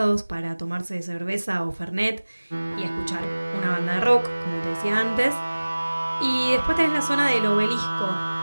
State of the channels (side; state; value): both; inverted; correlation -1.00